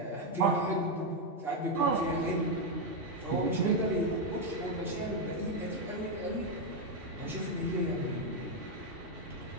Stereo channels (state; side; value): late; left; 2.7 ms